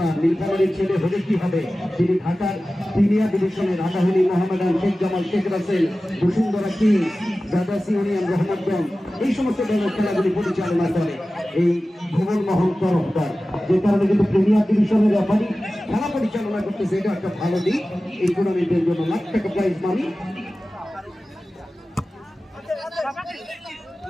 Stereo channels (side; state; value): both; normal; correlation 0.96